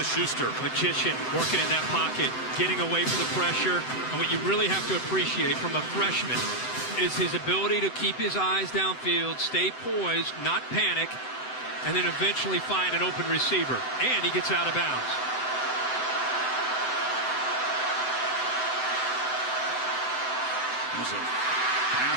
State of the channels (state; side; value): late; right; 7.8 ms